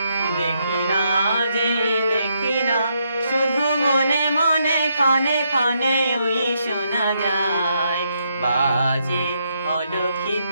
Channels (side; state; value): both; inverted; correlation -0.77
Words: দেখি না যে দেখি না শুধু মনে মনে ক্ষণে ক্ষণে ওই শোনা যায় বাজে